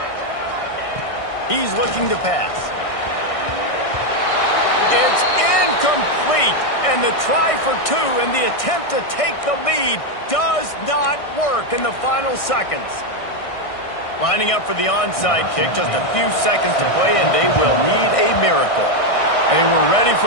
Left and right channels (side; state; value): right; late; 1.6 ms